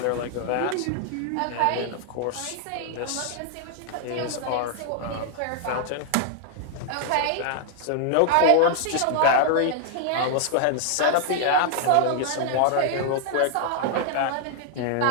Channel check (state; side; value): different; both; correlation 0.00